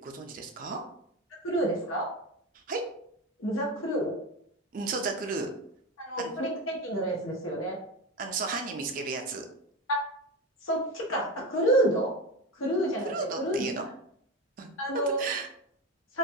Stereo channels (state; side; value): normal; both; correlation 0.21